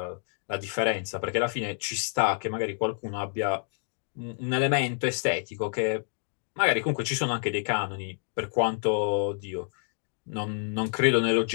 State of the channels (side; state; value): right; silent; 56 dB below the other